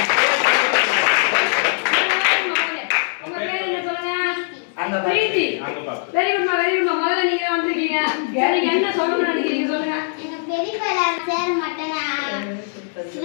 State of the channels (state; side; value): silent; right; 65 dB below the other